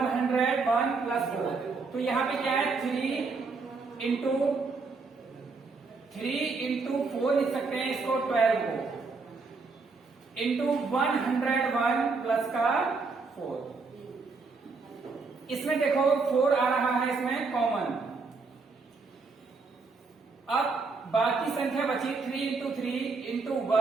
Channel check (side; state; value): left; quieter; 4.3 dB